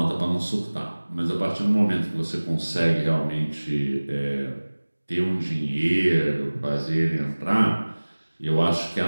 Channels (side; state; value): both; inverted; correlation -1.00